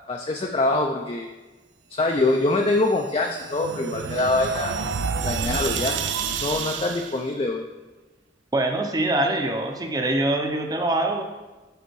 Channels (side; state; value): both; normal; correlation 0.36